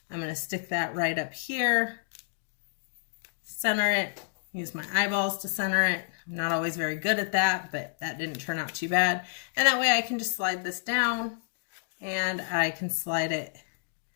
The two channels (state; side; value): silent; right; digital silence